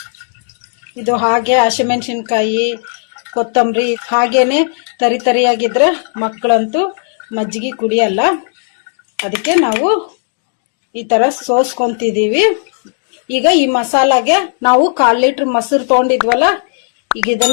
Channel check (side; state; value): right; silent; digital silence